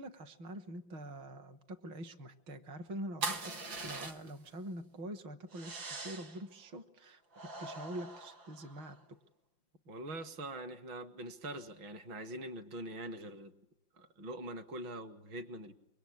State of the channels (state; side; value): late; left; 5.9 ms